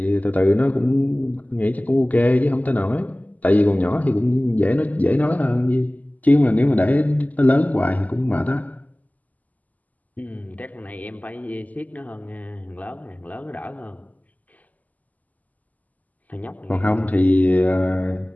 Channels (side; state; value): right; late; 0.078 ms